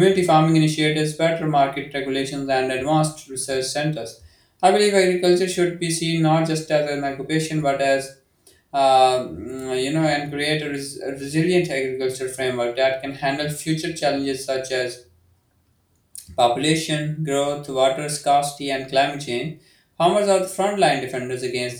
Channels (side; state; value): both; identical; correlation 1.00